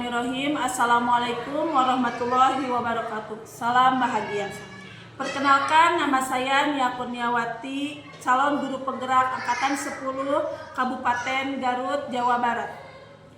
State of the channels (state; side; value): identical; both; correlation 1.00